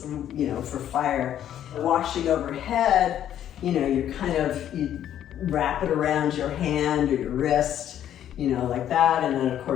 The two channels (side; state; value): right; quieter; 10.8 dB